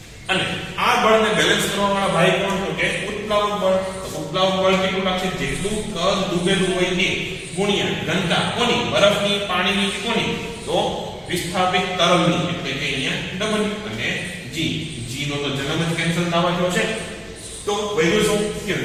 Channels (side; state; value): both; identical; correlation 1.00